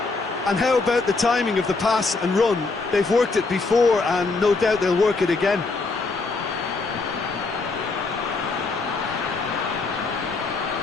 And how about the timing of the pass and run? They've worked it before, and no doubt they'll work it again.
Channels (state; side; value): quieter; right; 3.9 dB